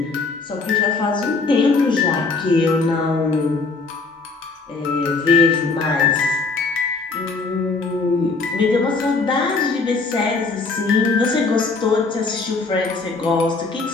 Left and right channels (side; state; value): right; quieter; 4.0 dB